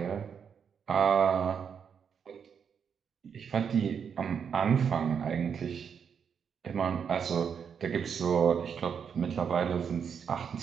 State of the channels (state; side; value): quieter; left; 7.1 dB